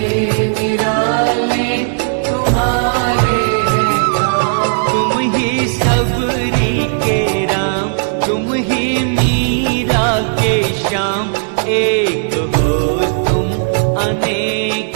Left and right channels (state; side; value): silent; left; digital silence